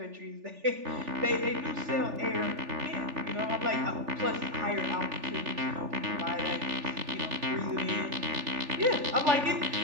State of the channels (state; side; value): late; left; 3.4 ms